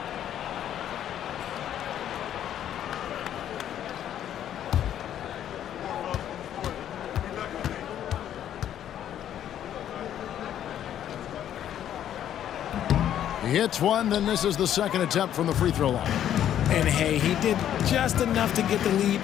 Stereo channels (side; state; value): right; quieter; 10.6 dB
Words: He hits one, then this is the second attempt from the free throw line. And hey, he did just enough to get the lead.